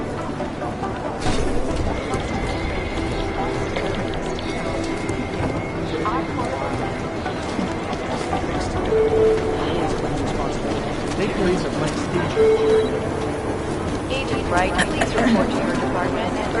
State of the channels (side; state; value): both; identical; correlation 1.00